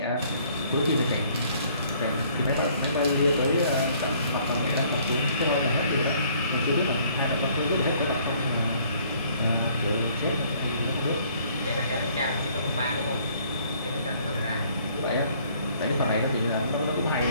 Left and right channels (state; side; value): inverted; both; correlation -0.61